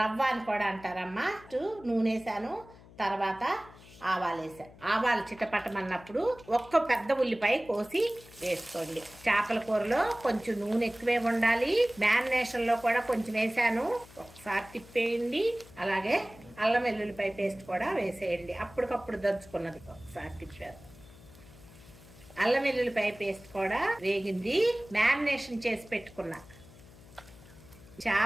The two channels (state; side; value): noise; left; hum, 21 dB below the sound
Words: అని కూడా అంటారమ్మా. నూనె వేసాను, తర్వాత ఆవాలు వేసాను. ఆవాలు చిటపటమన్నప్పుడు ఒక్క పెద్ద ఉల్లిపాయ కోసి వేసుకోండి. చేపల కూరలో కొంచెం నూనె ఎక్కువే ఉండాలి. మ్యారినేషన్ లో కూడా కొంచెం వేసాను, ఒకసారి తిప్పేయండి. అలాగే అల్లం వెల్లుల్లిపాయ పేస్ట్ కూడా వేసేయండి, అప్పటికప్పుడు దంచుకున్నది. ఒకసారి తిప్పారు. అల్లం వెల్లుల్లిపాయ పేస్ట్ కూడా వేగింది. మ్యారినేషన్ చేసి పెట్టుకున్నా